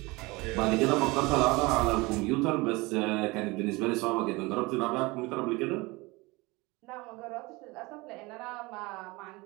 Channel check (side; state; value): left; quieter; 23.7 dB